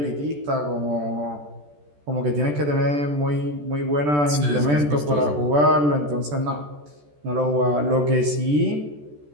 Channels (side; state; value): left; late; 14 ms